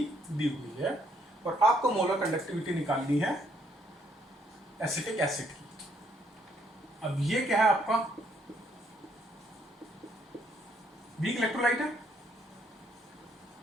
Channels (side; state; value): both; normal; correlation 0.69